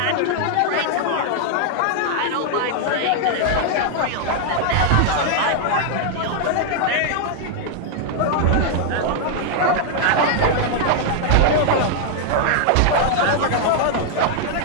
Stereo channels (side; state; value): both; different; correlation 0.00